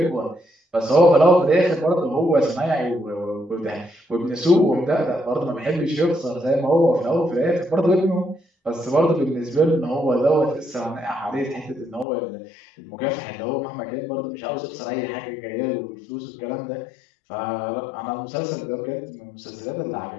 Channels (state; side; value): drops out; right; at 12.1 s